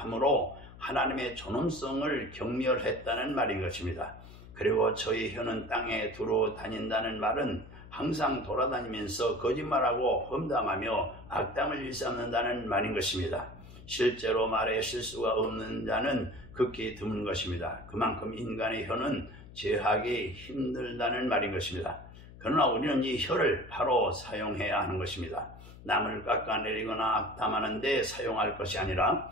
하나님의 존엄성을 경멸했다는 말인 것입니다. 그리고 저희 혀는 땅에 두루 다닌다는 말은 항상 돌아다니면서 거짓말하고 험담하며 악담을 일삼는다는 말인 것입니다. 실제로 말에 실수가 없는 자는 극히 드문 것입니다. 그만큼 인간의 혀는 제하기 힘들다는 말인 것입니다. 그러나 우리는 이 혀를 바로 사용해야 하는 것입니다. 남을 깎아내리거나 악담하는 데 사용할 것이 아니라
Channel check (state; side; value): noise; left; hum, 17 dB below the sound